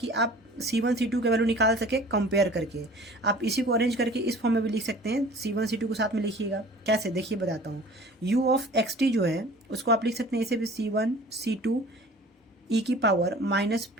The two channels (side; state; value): both; normal; correlation 0.46